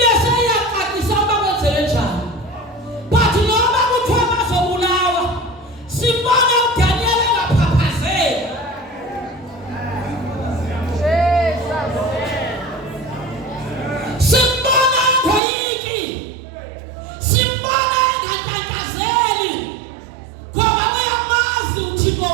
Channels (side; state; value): left; drops out; at 15.4 s